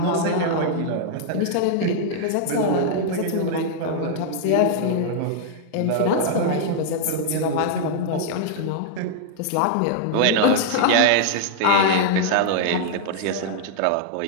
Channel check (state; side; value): different; both; correlation -0.01